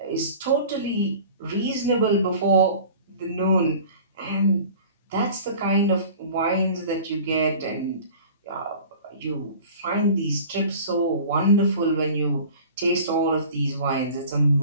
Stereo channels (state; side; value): inverted; both; correlation -0.43